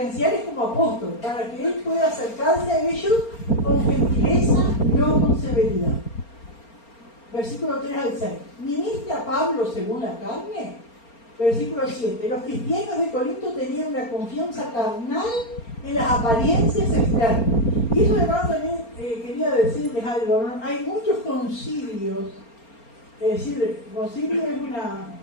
como apóstol, para que él pueda acercarse a ellos con gentileza, no con severidad. Versículo 3 al 6. ¿Ministra Pablo según la carne? Versículo 7. Los cristianos de Corinto tenían una confianza carnal en las apariencias externas. Y eso, hermano, también quería decirles algo, ¿no? Hay muchos concilios, es decir, concilio es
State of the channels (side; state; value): right; late; 4.3 ms